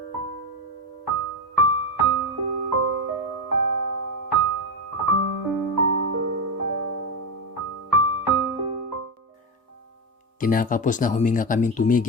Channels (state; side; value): normal; both; correlation 0.12